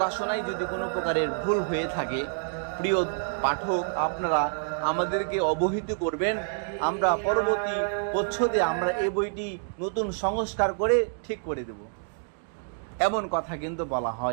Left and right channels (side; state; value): left; silent; digital silence